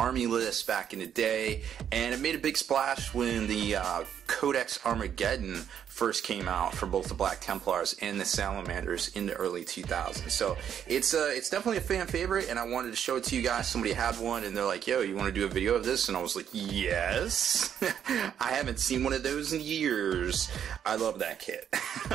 list back in the day, and it made a big splash when the Codex Armageddon first came out for both the Black Templars and the Salamanders in the early 2000s. So it's definitely a fan favorite, and I wanted to show it to you guys. Somebody had one, and they're like, "Yo, you want to do a video of this?" And I was like, "Yes." I haven't seen one of those in years. I love that kit.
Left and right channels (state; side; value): quieter; left; 8.9 dB